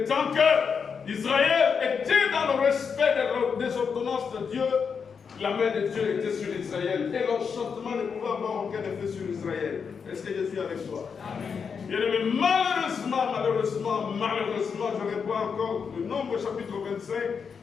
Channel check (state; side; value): quieter; right; 6.1 dB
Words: tant que Israël était dans le respect des ordonnances de Dieu, la main de Dieu était sur Israël. Et l'enchantement ne pouvait avoir aucun effet sur Israël. Est-ce que je suis avec toi? Amen. Bien aimé, malheureusement, je reprends encore le Nombre chapitre 25,